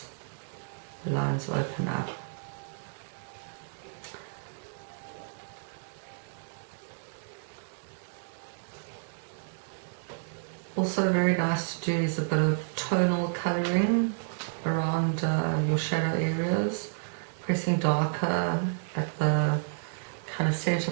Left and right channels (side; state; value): left; silent; digital silence